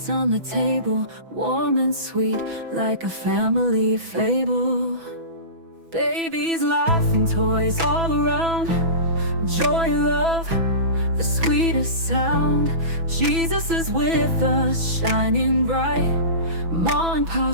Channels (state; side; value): late; left; 6.1 ms